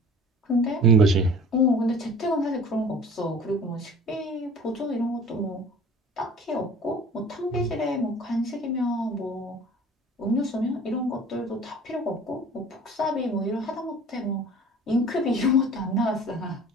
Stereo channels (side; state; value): both; normal; correlation 0.45